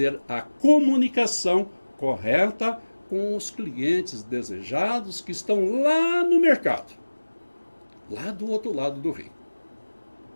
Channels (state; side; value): inverted; both; correlation -1.00